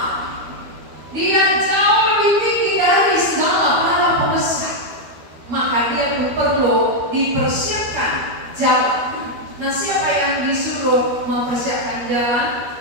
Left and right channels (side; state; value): left; late; 12 ms